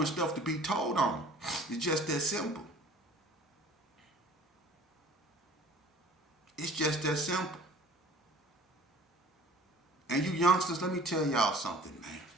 stuff to be told on. It's just that simple. It's just that simple. And you youngsters, let me tell y'all something,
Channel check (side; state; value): both; normal; correlation 0.49